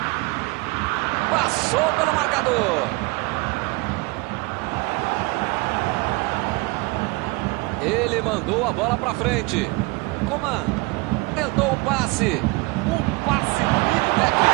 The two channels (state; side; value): quieter; left; 25.2 dB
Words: Passou pelo marcador. Ele mandou a bola para frente. Coman tentou o passe. Um passe